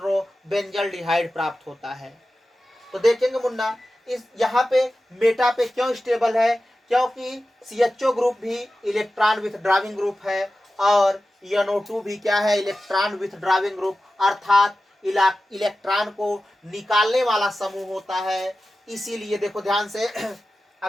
बेंजल्डिहाइड प्राप्त होता है। तो देखेंगे मुन्ना, इस यहाँ पे मेटा पे क्यों स्टेबल है, क्योंकि CHO ग्रुप भी इलेक्ट्रॉन विथड्राविंग ग्रुप है और NO2 भी क्या है, इलेक्ट्रॉन विथड्राविंग ग्रुप अर्थात इलेक्ट्रॉन को निकालने वाला समूह होता है। इसीलिए देखो ध्यान से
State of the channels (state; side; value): normal; both; correlation 0.94